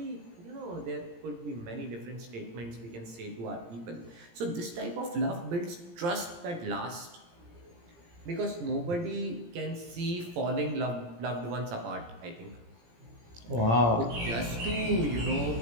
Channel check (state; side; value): late; left; 17 ms